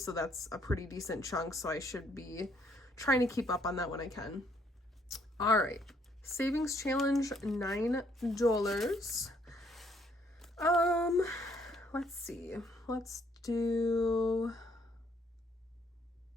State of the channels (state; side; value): normal; both; correlation 0.68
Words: that's a pretty decent chunk. So I should be trying to keep up on that when I can. All right, savings challenge, $9. Let's see. Let's do.